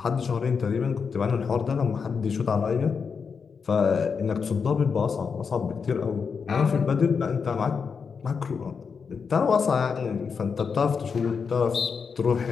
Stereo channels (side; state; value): right; quieter; 5.8 dB